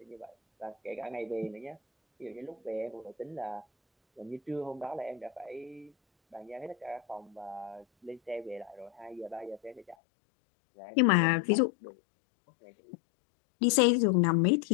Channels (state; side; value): drops out; right; at 10.0 s